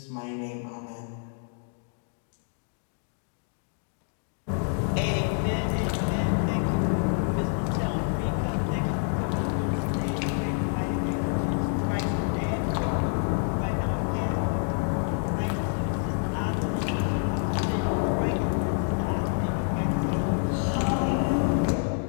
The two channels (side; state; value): right; silent; 56 dB below the other